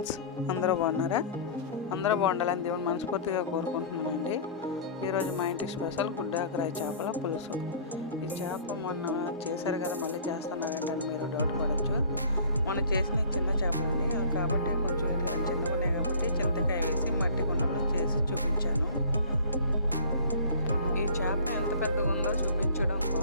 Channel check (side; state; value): both; inverted; correlation -0.43